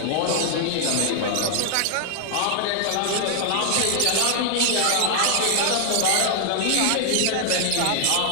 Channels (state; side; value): different; both; correlation 0.00